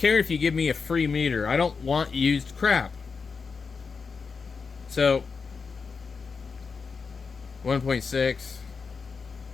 if you give me a free meter. I don't want used crap. So, 1.6.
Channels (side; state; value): right; quieter; 5.1 dB